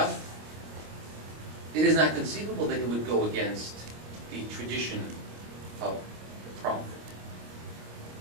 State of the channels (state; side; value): late; left; 26 ms